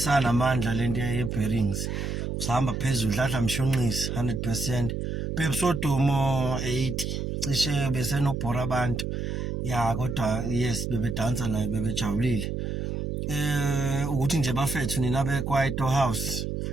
lento ye-bearings usahamba phezulu dladla mshunqisi 100%. Pepsodomo 80 cishe besenobhora abantu. Ya kodwa yes bebedansa naye bebejabulile. Ukuthi nje bafethu nina beKwaito House.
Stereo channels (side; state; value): right; noise; hum, 3 dB below the sound